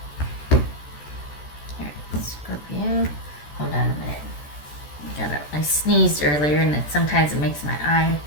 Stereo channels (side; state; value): right; late; 14 ms